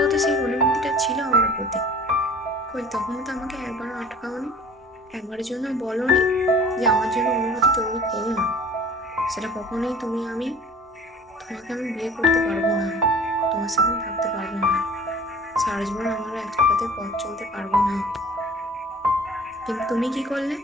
তো সেই অনুভূতিটা ছিল আমার প্রতি। কই তখন তো আমাকে একবারও আটকাওনি, একবারের জন্য বলোনি যে আমার জন্য অনুভূতি তৈরি করো না। সেটা কখনোই তোমাকে আমি বিয়ে করতে পারবো না, তোমার সাথে থাকতে পারবো না, সারা জীবন আমরা একসাথে পথ চলতে পারবো না। কিন্তু তুমি কি করলে?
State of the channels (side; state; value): both; normal; correlation 0.46